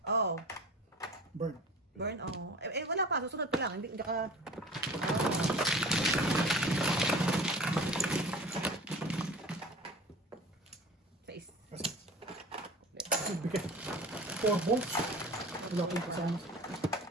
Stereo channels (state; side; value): normal; both; correlation 0.40